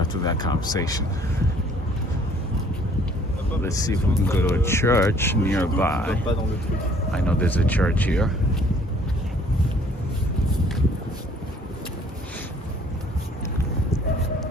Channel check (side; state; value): both; normal; correlation 0.58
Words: that conversation. Let's see if we can go to a church nearby. I know there's a church here.